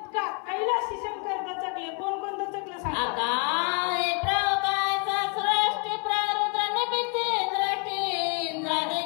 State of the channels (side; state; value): right; quieter; 36.3 dB